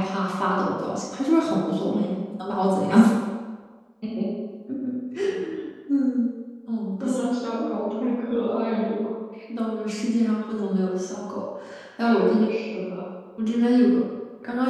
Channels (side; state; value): both; identical; correlation 1.00